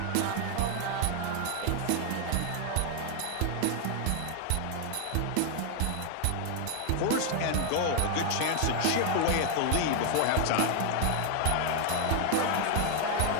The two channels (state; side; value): different; both; correlation 0.00